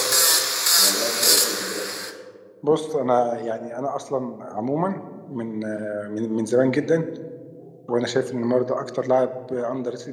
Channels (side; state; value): both; identical; correlation 1.00